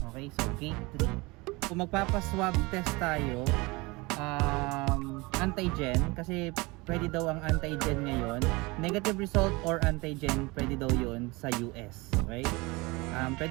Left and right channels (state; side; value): quieter; left; 24.3 dB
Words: Okay, so gate 3. Kung magpapaswab test tayo, antigen, kasi pwede daw ang antigen ngayon, negative result or antigen, pwede daw yun sa US. Okay,